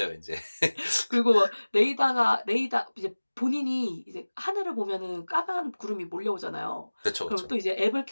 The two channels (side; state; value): both; inverted; correlation -1.00